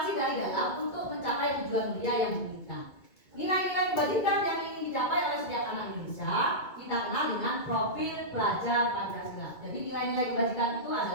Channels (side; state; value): right; late; 2.2 ms